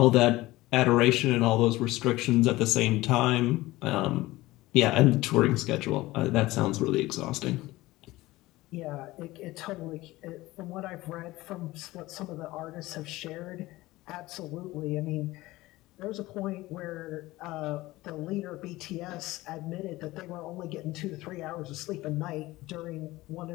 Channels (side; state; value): right; quieter; 18.6 dB